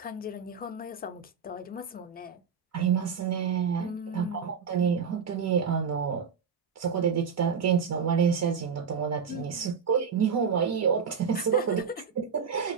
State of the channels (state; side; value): quieter; left; 6.3 dB